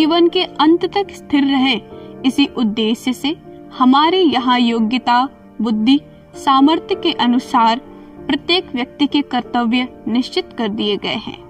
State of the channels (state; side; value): identical; both; correlation 1.00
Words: के अंत तक स्थिर रहे, इसी उद्देश्य से हमारे यहाँ योग्यता, बुद्धि, सामर्थ्य के अनुसार प्रत्येक व्यक्ति के कर्तव्य निश्चित कर दिए गए हैं।